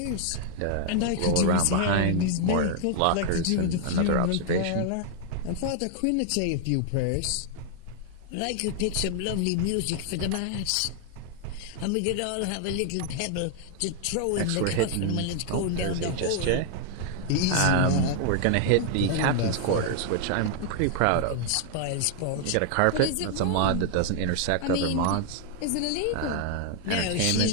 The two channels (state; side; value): different; both; correlation 0.00